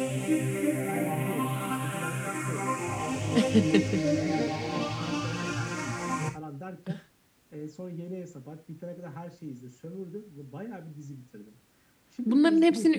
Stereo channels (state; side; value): identical; both; correlation 1.00